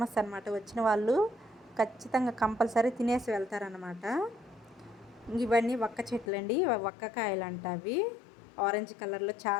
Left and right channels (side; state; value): right; drops out; at 6.3 s